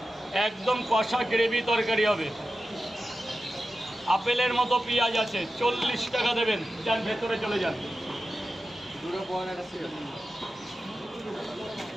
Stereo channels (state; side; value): normal; both; correlation 0.92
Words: একদম কষা গ্রেভি তরকারি হবে। আপেলের মতো পেঁয়াজ আছে, 40 টাকা দেবেন। যান ভেতরে চলে যান।